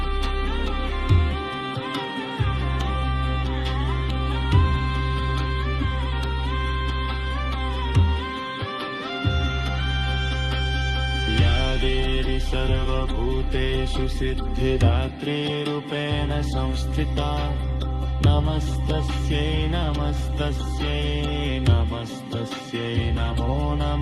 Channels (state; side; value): identical; both; correlation 1.00